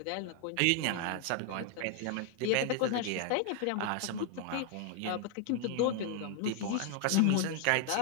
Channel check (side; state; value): both; different; correlation 0.00